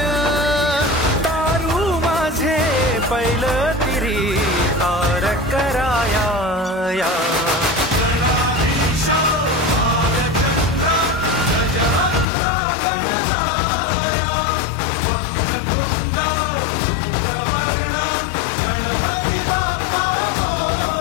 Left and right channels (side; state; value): right; drops out; at 12.2 s